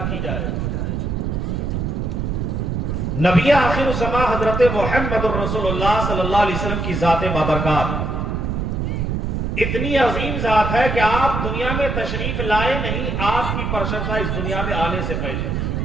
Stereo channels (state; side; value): noise; right; rumble, 1 dB below the sound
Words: کی جائے. نبی آخر الزمان حضرت محمد الرسول اللہ صلی اللہ علیہ وسلم کی ذات بابرکات اتنی عظیم ذات ہے کہ آپ دنیا میں تشریف لائے نہیں، آپ کی پرشنسا اس دنیا میں آنے سے پہلے